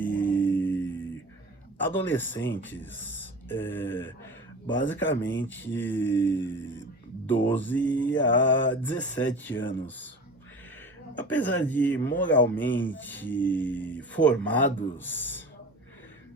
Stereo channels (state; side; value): normal; both; correlation 0.35